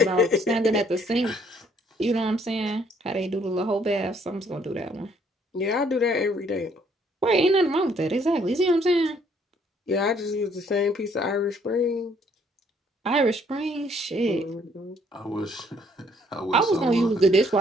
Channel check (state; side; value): normal; both; correlation 0.65